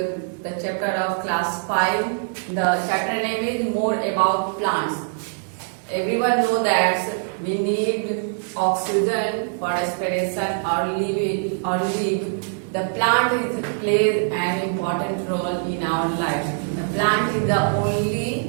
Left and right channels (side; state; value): left; silent; digital silence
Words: chapter of class 5. The chapter name is More About Plants. Everyone know that we need oxygen for respiration or live. The plant plays an important role in our lives. The plant is the